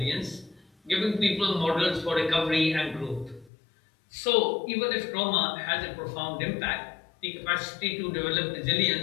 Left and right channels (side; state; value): right; drops out; at 3.5 s